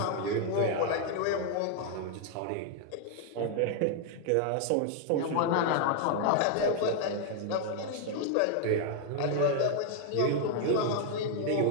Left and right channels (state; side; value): different; both; correlation 0.00